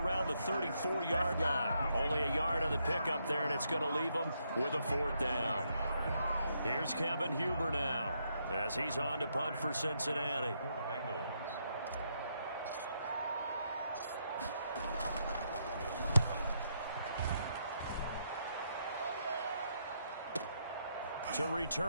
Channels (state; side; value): inverted; both; correlation -0.77